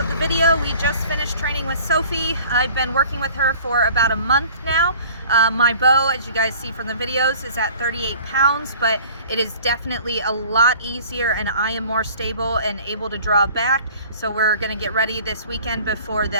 the video. We just finished training with Sophie. I've been working with her for about a month now. My bow, as you guys see from the videos, is at 38 pounds, but it is definitely a lot easier, and I am more stable and able to draw back. So we're gonna get ready this weekend before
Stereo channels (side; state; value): both; inverted; correlation -0.49